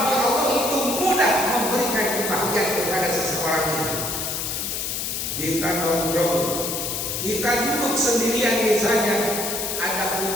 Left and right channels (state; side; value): noise; left; hiss, 3 dB below the sound